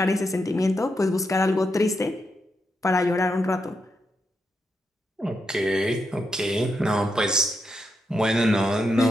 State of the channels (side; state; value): both; normal; correlation 0.83